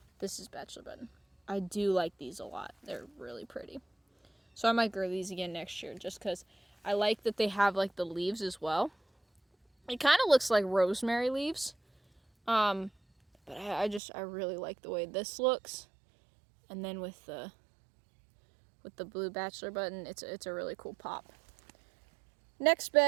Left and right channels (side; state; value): left; drops out; at 14.0 s